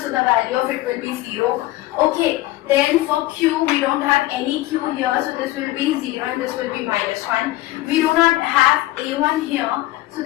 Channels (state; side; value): quieter; right; 17.0 dB